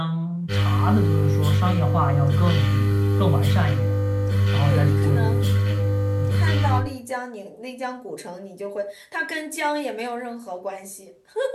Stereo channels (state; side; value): identical; both; correlation 1.00